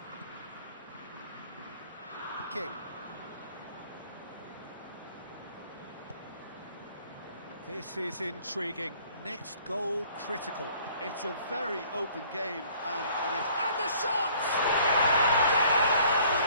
King. This is intriguing. Next goal critical. It's a very open game, and the shot! Goal,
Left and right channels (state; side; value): inverted; both; correlation -0.56